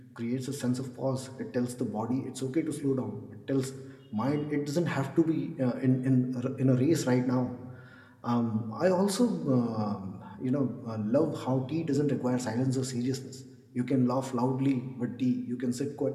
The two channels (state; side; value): identical; both; correlation 1.00